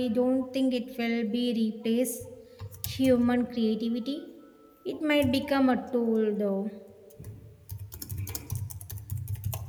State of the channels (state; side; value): identical; both; correlation 1.00